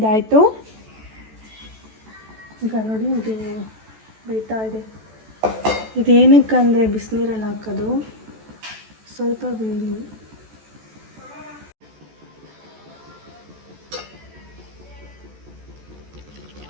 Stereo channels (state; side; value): late; left; 14 ms